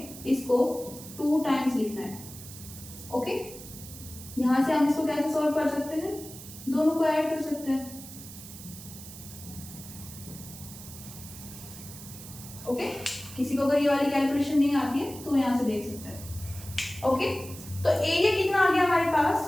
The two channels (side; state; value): right; noise; hiss, 14 dB below the sound